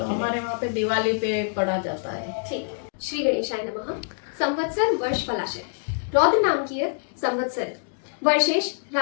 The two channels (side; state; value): right; silent; digital silence